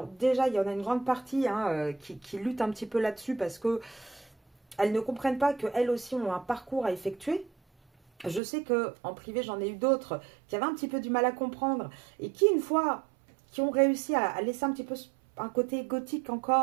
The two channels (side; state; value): left; drops out; at 8.4 s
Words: déjà, il y en a une grande partie hein, qui lutte un petit peu là-dessus parce que elles ne comprennent pas qu'elles aussi ont un parcours à effectuer. Je sais qu'en privé, j'en ai eu d'autres qui avaient un petit peu du mal à comprendre et qui, une fois, qui ont réussi à laisser un petit peu un côté égotique